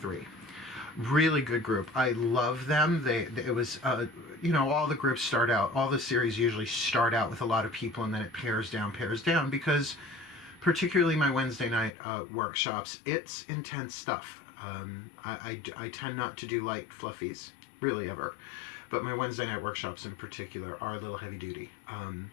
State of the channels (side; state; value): right; drops out; at 11.9 s